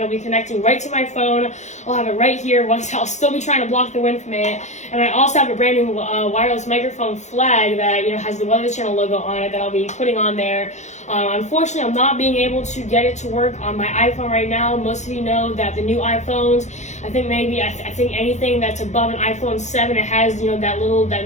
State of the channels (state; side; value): late; right; 0.34 ms